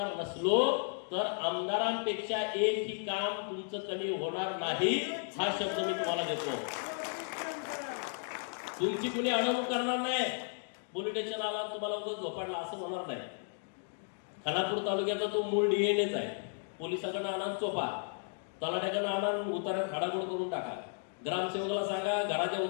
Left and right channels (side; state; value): right; silent; 55 dB below the other